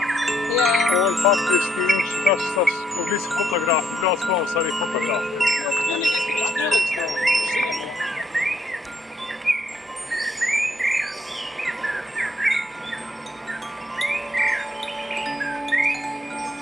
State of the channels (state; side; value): normal; both; correlation 0.72